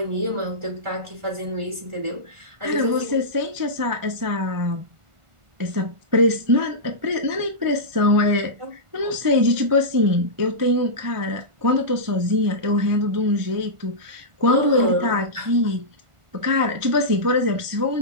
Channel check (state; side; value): late; left; 1.4 ms